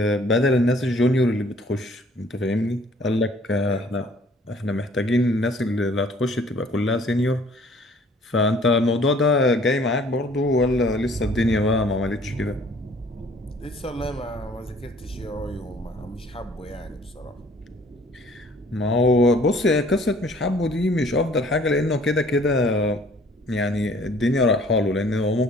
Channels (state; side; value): normal; both; correlation 0.56